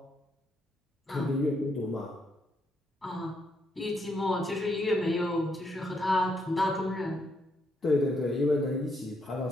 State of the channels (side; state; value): both; normal; correlation 0.76